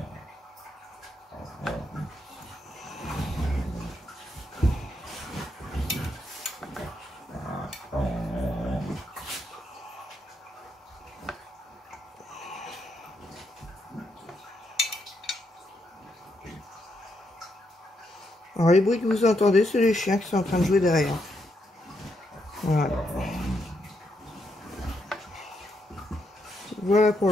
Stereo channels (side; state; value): both; normal; correlation 0.79